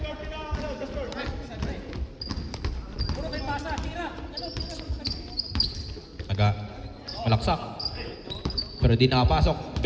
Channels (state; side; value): identical; both; correlation 1.00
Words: Malaksak. Pero di nakapasok.